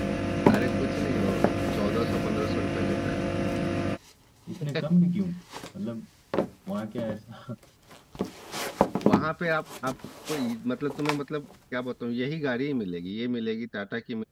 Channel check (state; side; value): identical; both; correlation 1.00